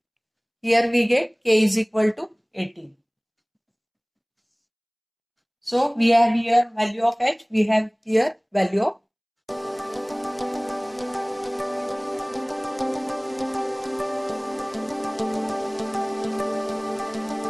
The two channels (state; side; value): identical; both; correlation 1.00